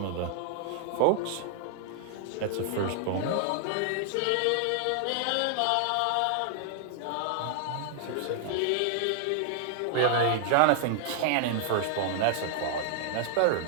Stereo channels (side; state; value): both; different; correlation 0.00